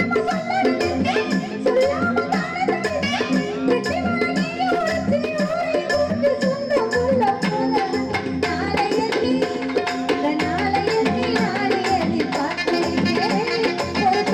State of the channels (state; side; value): identical; both; correlation 1.00